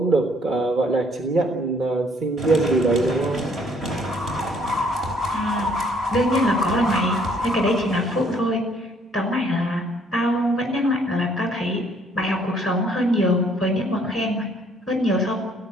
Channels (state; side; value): normal; both; correlation 0.63